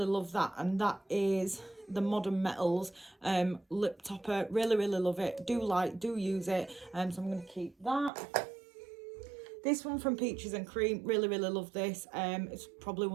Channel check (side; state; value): left; drops out; at 8.1 s